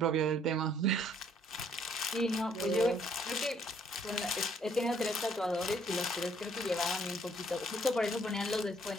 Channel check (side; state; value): both; normal; correlation 0.65